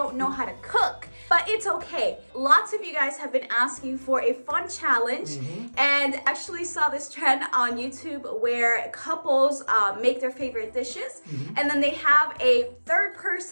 know how to cook. But it's okay. Lots of you guys have been asking for a fun challenge. And actually saw this trend on YouTube where couples make their favorite dishes. And then they have a third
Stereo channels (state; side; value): inverted; both; correlation -1.00